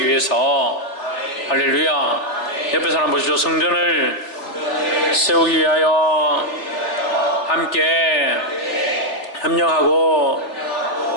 위해서. 할렐루야. 옆에 사람 보시죠. 성전을 세우기 위하여 함께 협력하고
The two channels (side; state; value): right; late; 3.5 ms